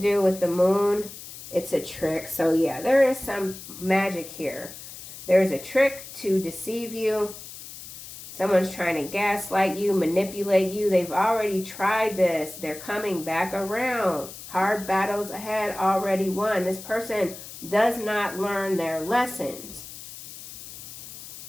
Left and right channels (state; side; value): noise; left; hiss, 14 dB below the sound